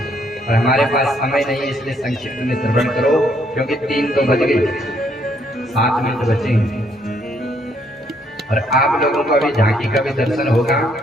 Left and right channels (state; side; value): normal; both; correlation 0.70